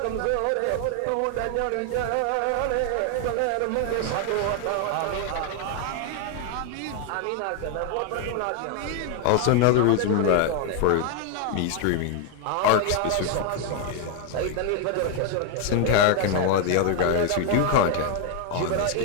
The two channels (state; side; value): different; both; correlation 0.00